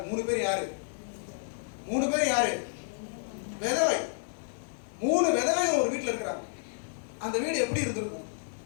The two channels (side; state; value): right; silent; digital silence